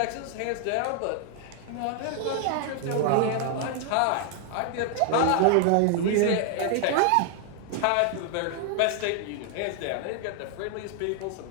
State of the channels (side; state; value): both; different; correlation 0.00